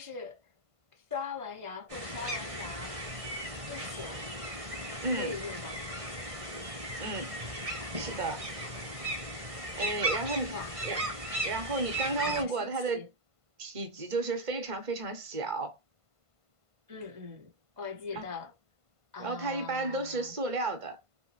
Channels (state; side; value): late; left; 1.5 ms